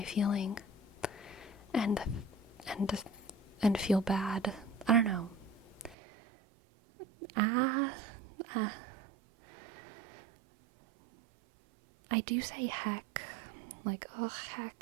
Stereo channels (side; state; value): left; drops out; at 6.0 s